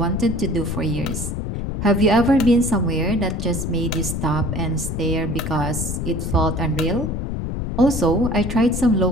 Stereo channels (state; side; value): noise; left; rumble, 4 dB below the sound